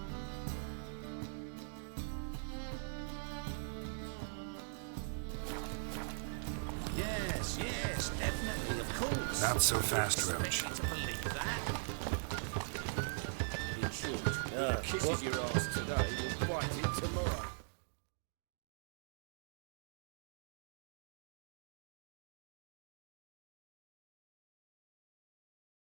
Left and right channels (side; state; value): left; silent; digital silence